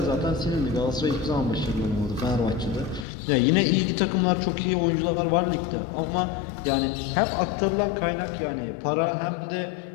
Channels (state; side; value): drops out; right; at 3.1 s